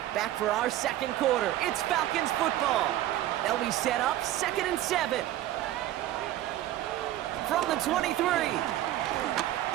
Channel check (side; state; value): left; quieter; 13.8 dB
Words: Back for our second quarter. It's Falcons football. They'll be set up second and 7. From the 23. Down